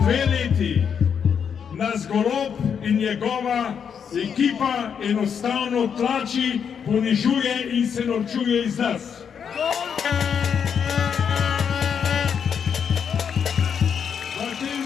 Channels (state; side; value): quieter; right; 7.3 dB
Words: leti nas Golob in njegova ekipa enostavno tlači, ponižuje in se norčuje iz nas. V tem